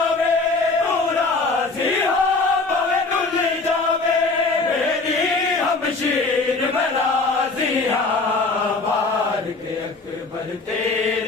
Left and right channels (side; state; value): right; quieter; 3.7 dB